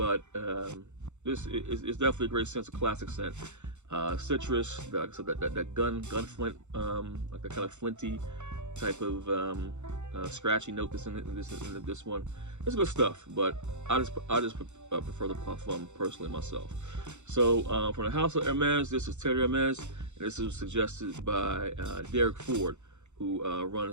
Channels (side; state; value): left; late; 0.83 ms